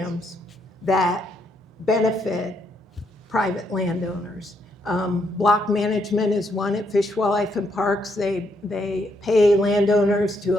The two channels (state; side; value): normal; both; correlation 0.75